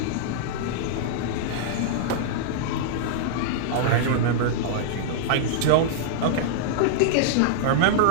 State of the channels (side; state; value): both; different; correlation -0.02